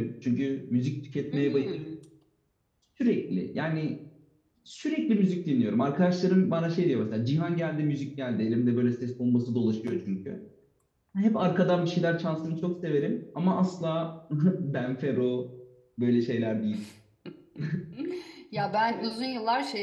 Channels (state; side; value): identical; both; correlation 1.00